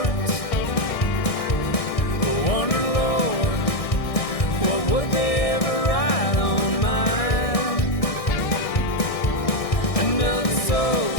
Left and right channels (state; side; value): late; right; 1.6 ms